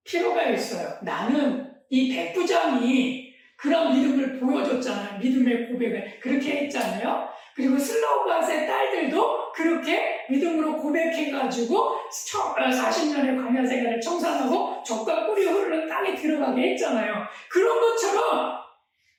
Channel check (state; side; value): identical; both; correlation 1.00